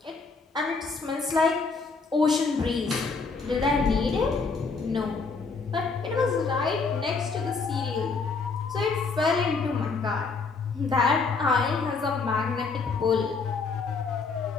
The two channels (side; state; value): right; quieter; 4.5 dB